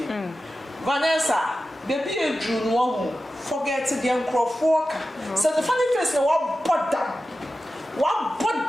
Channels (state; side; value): normal; both; correlation 0.93